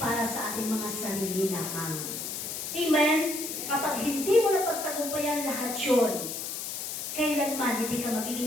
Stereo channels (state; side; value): noise; left; hiss, 5 dB below the sound